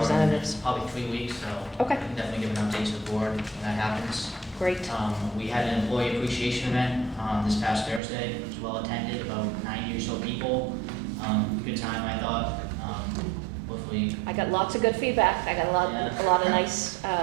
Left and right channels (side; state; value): left; drops out; at 8.0 s